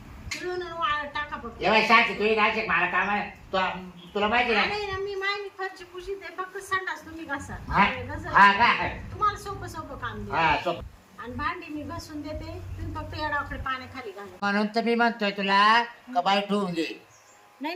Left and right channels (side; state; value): both; identical; correlation 1.00